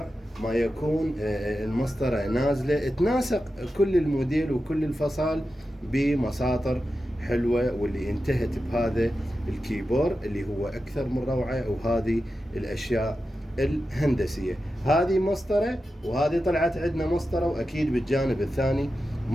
ما يكون. المسطرة نازلة تناسق كل الموديل وكل الفصال بمساطر حلوة، واللي انتهت بهذا الكيبورد اللي هو أكثر من روعة. وهذه الأشياء الهندسية، هذه مسطرة وهذه طلعت عندنا مسطرة، وأكيد بالجانب الثاني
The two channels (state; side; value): normal; both; correlation 0.91